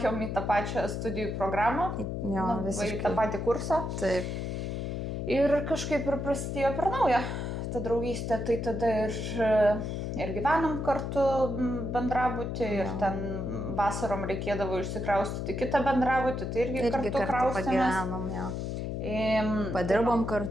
į tą pačią studijų programą, į tą patį kursą. Taip. Ir kažkaip ir prasidėjo per naują ta draugystė, tai tada ir gyvenom kartu bendrabutį, ir ten vasarom reikėdavo išsikraustyti kitą bendrabutį, tai irgi kartu kraustėmės. Padirbom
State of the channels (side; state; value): left; noise; hum, 3 dB below the sound